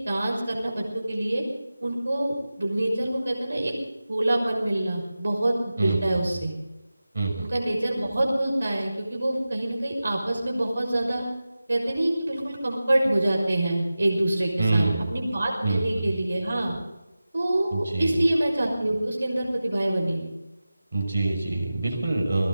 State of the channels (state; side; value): inverted; both; correlation -0.95